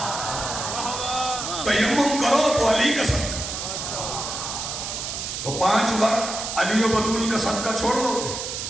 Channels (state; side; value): noise; right; hiss, 5 dB below the sound